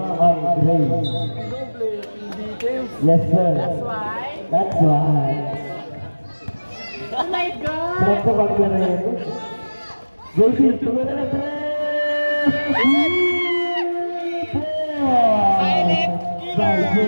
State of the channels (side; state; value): both; inverted; correlation -1.00